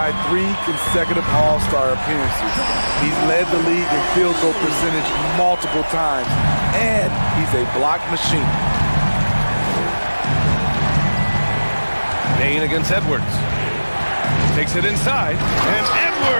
3 consecutive All-Star appearances. He's led the league in field goal percentage multiple times. And he's a block machine. Bain against Edwards. Takes it inside. And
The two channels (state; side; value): inverted; both; correlation -1.00